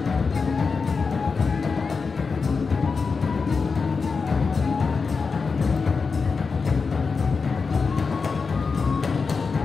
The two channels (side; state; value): right; quieter; 4.9 dB